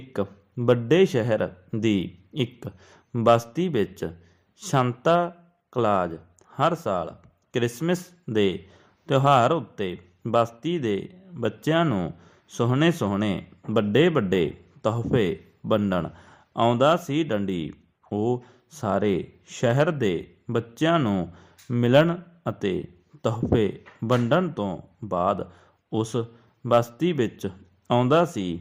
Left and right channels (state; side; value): identical; both; correlation 1.00